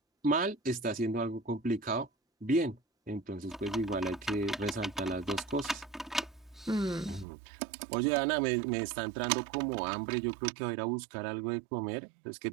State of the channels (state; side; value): drops out; left; at 7.2 s